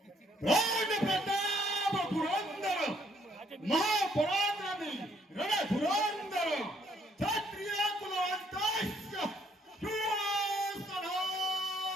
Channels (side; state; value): both; normal; correlation 0.67